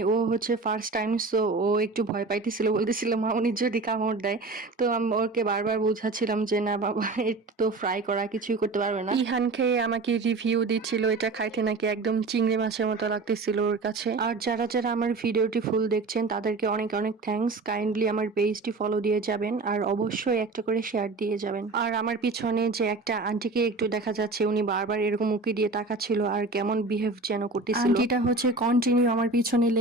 ও হচ্ছে ফার্স্ট টাইম, সো ও একটু ভয় পাইতেছিল, বলতেছিল মা উনি যদি কামড় দেয়। তো আমি ওকে বারবার বোঝাচ্ছিলাম যে না বাবা, এটা তো ফ্রাই করা, কিছুই করতে পারবে না। ইহান খেয়ে আমাকে রিভিউ দিচ্ছিল এটা খাইতে নাকি একদম চিংড়ি মাছের মতো লাগতেছিল ওর কাছে। আর যারা যারা আমার ভিডিওটি ফুল দেখছেন তাদেরকে অনেক অনেক থ্যাঙ্কস। কাইন্ডলি আমার পেজটি ফলো দিয়ে যাবেন, আর অবশ্যই একটা করে শেয়ার দিয়ে যাবেন। আর আমার পিছনে যে একটা আন্টিকে একটু দেখা যাচ্ছে, উনি বারবার এরকম উকি দিয়ে তাকাচ্ছিল আর কেমন বিহেভ যেন করতেছিল। আন্টিটা হচ্ছে কন্টিনিউ আমার পিছনে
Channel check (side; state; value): left; quieter; 3.6 dB